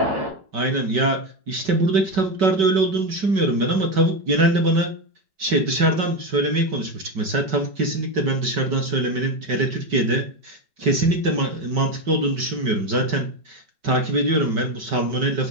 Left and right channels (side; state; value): left; late; 5.2 ms